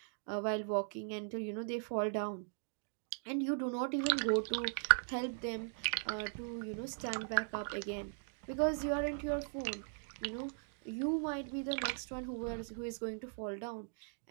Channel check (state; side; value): silent; left; digital silence